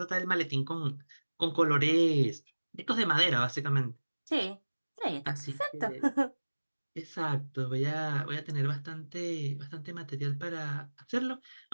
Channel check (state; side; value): inverted; both; correlation -1.00